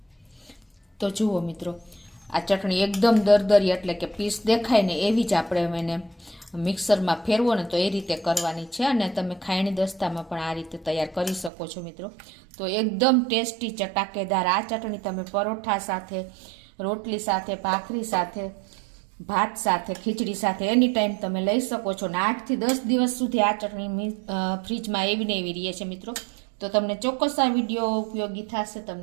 તો જુઓ મિત્રો, આ ચટણી એકદમ દરદરી એટલે કે પીસ દેખાય ને એવી જ આપણે એને મિક્સરમાં ફેરવો ને તો એ રીતે કરવાની છે. અને તમે ખાયણી દસ્તામાં પણ આ રીતે તૈયાર કરી શકો છો મિત્રો. તો એકદમ ટેસ્ટી ચટાકેદાર આ ચટણી તમે પરોઠા સાથે, રોટલી સાથે, ભાખરી સાથે, ભાત સાથે, ખીચડી સાથે એની ટાઈમ તમે લઈ શકો છો. ને 8 થી 10 દિવસ સુધી આ ચટણી ફ્રીજમાં એવી ને એવી રહે છે મિત્રો. તો તમને ચોક્કસ આ વિડીયો ઉપયોગી થશે.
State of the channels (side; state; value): left; drops out; at 11.5 s